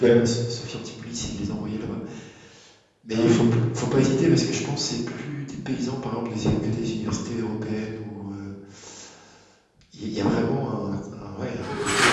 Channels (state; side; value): identical; both; correlation 1.00